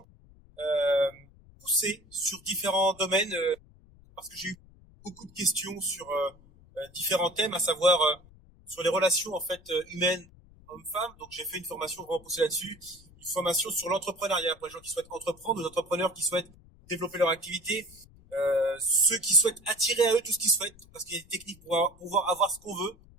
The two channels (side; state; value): left; noise; rumble, 25 dB below the sound